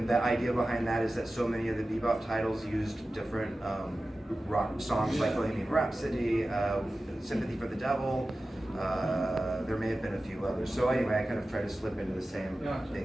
the idea behind that is that so many of the Bebop titles used different rock songs like Bohemian Rhapsody, Sympathy for the Devil. There may have been a few others. So anyway, I kind of try to slip into the same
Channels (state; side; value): normal; both; correlation 0.95